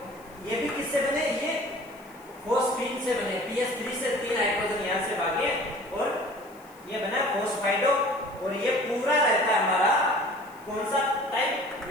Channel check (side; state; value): left; noise; hiss, 26 dB below the sound